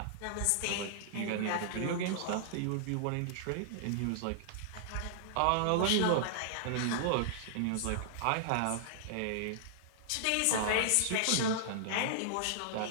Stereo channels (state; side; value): different; both; correlation -0.01